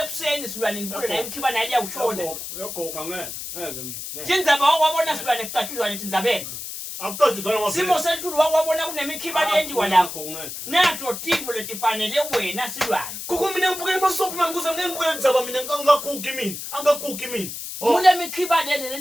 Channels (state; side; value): noise; left; hiss, 8 dB below the sound